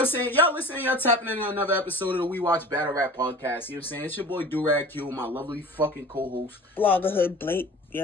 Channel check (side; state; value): both; normal; correlation 0.40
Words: saying, y'all listening, y'all tapping into another episode of the WeWatch BattleRap Podcast, you know what I'm saying, it's your boy Durag Q, my lovely fucking co-host. Bloggerhood Blake.